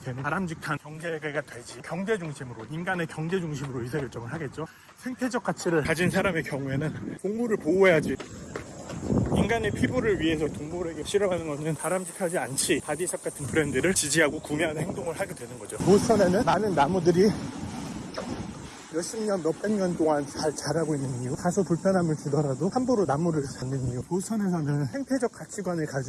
바람직한 경제가 되지. 경제 중심으로, 인간의 경제 중심으로 의사결정을 하겠죠. 생태적 가치를 가진 사람의 경우에는 동물을 보호해야지. 인간의 피부를 위해서 동물에게 실험하는 것은 바람직하지 않지. 바디샵 같은 브랜드를 지지하고 구매하는 행동을 하게 되는 거죠. 보스턴에는 많은 나무들이 몇십 년, 몇백 년 동안 잘 자라고 있는 이유, 다소 불편함을 주더라도 함부로 나무를 잡는 이유. 보스턴에서는 생태적 가치관을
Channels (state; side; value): identical; both; correlation 1.00